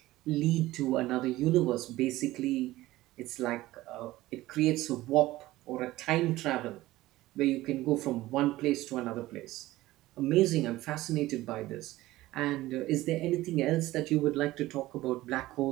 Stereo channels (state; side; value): quieter; left; 17.1 dB